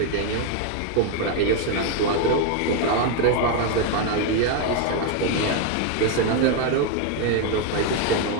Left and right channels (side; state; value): both; different; correlation 0.01